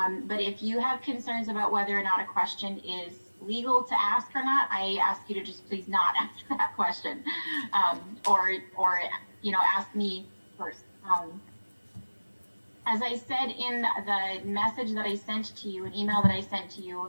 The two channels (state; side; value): inverted; both; correlation -1.00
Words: but if you have concerns about whether or not a question is legal to ask or not, I ask you to just please not ask that question, or you know, ask me first. As I said in the message that I sent to you, an email that I sent to you,